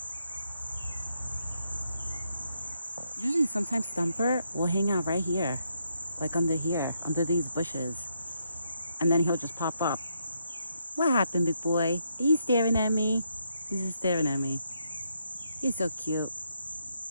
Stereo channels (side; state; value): both; inverted; correlation -0.77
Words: Usually sometimes Thumper will hang out right here. Like under here, under these bushes. And then he'll just pop up. What happened, big boy? Are you staring at me? He's just staring at me. You're so cute.